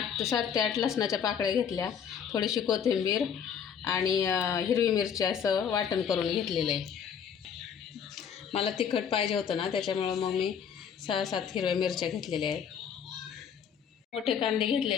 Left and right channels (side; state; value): right; quieter; 7.7 dB